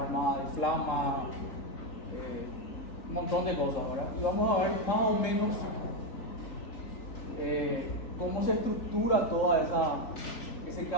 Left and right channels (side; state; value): right; late; 3.7 ms